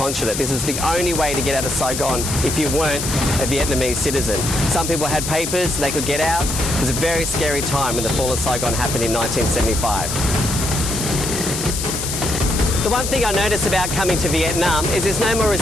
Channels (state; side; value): noise; left; hiss, 4 dB below the sound